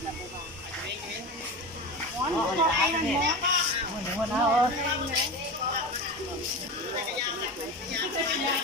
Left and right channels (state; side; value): normal; both; correlation 0.26